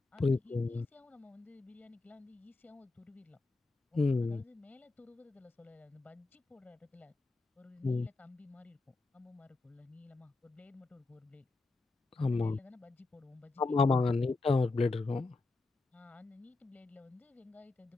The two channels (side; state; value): right; quieter; 3.4 dB